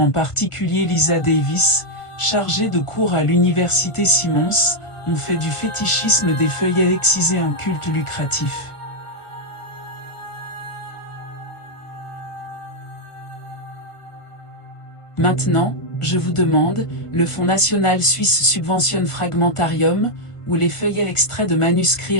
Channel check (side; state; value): right; late; 1.5 ms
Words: particulier Lisa Davis, chargée de cours à l'université Simmons, ont fait du fétichisme des feuillets excisés un culte lucratif. Maintenant, je vous demande, le Fonds national suisse subventionne Fragmentarium, où les feuillets extraits de manuscrits